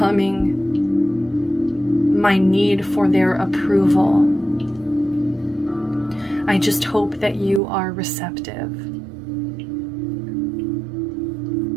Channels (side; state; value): left; drops out; at 7.6 s